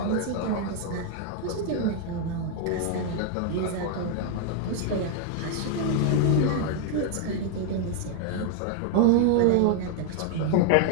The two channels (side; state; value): both; different; correlation 0.00